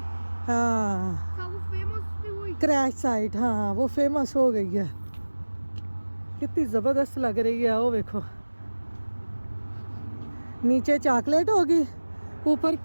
हाँ वो फेमस भी हुई। क्रैश साइट, हाँ वो फेमस हो गई है। कितनी ज़बरदस्त लग रही है। वो देखो नीचे चॉकलेट होगी, ऊपर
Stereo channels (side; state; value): both; inverted; correlation -1.00